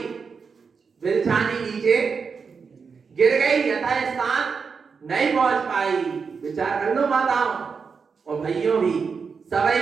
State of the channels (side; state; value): left; quieter; 5.5 dB